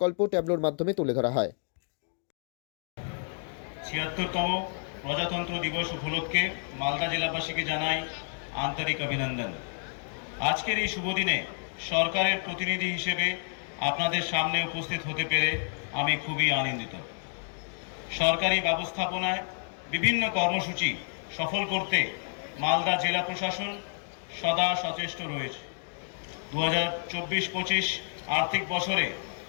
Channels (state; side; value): silent; right; 58 dB below the other